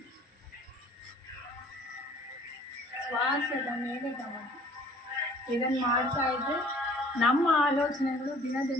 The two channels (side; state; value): both; normal; correlation 0.53